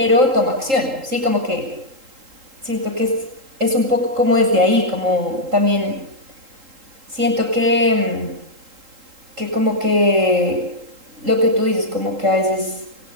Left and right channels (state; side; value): late; left; 3.8 ms